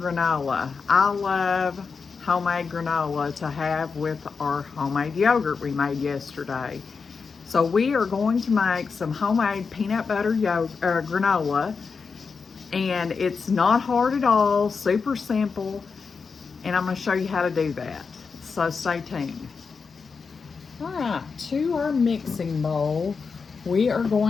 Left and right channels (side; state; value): right; quieter; 5.2 dB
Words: I love homemade granola to have with our homemade yogurt we made yesterday. So we are going to make some homemade peanut butter granola, and it's not hard at all, super simple, and I'm going to show you how to do that. So stay tuned. All right, to our mixing bowl, we are